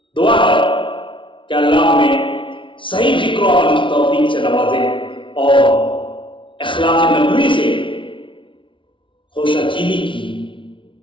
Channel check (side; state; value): right; late; 0.25 ms